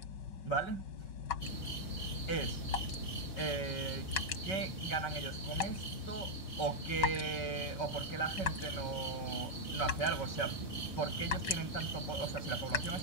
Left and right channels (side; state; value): right; late; 5.3 ms